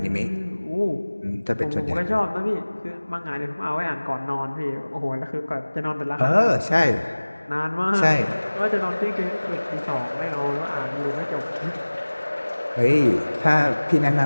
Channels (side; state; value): both; inverted; correlation -1.00